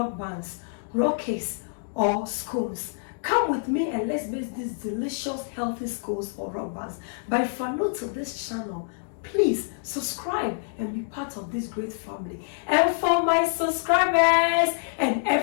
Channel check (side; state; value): right; silent; digital silence